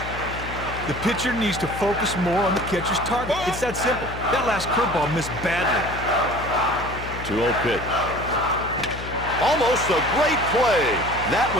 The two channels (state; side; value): noise; left; hum, 10 dB below the sound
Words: The pitcher needs to focus more on the catcher's target. It's that simple. That last curveball missed badly. 2-0 pitch. Almost a great play. That